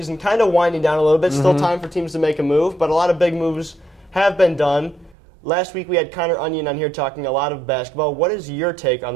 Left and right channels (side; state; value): left; drops out; at 5.2 s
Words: kind of winding down a little bit. Still time for teams to make a move, but a lot of big moves have been done. Last week we had Connor Onion on here talking a lot of basketball. What is your take on